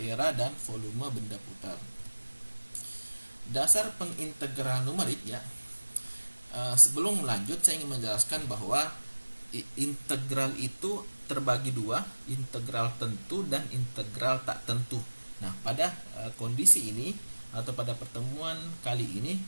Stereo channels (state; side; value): inverted; both; correlation -1.00